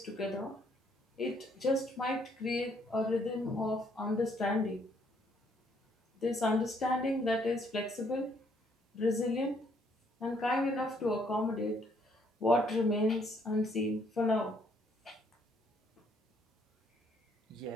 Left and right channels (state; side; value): normal; both; correlation 0.68